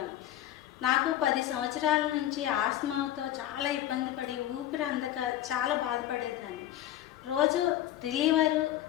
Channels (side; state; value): right; quieter; 12.7 dB